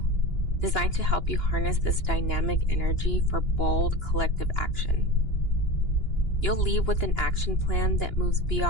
designed to help you harness this dynamic energy for bold, collective action. You'll leave with an action plan that moves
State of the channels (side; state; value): right; late; 2.9 ms